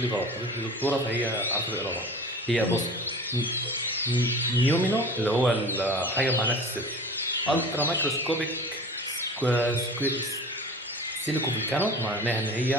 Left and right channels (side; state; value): both; normal; correlation 0.38